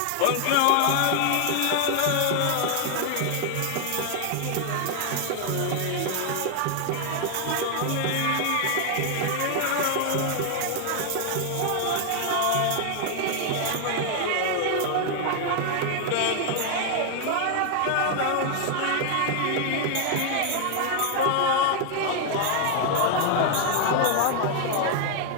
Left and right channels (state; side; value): different; both; correlation 0.00